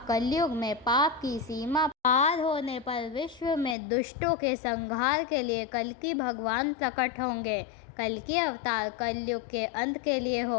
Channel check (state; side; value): drops out; right; at 3.8 s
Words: कलयुग में पाप की सीमा पार होने पर विश्व में दुष्टों के संहार के लिए कल्कि भगवान प्रकट होंगे। कल्कि अवतार कलयुग के अंत के लिए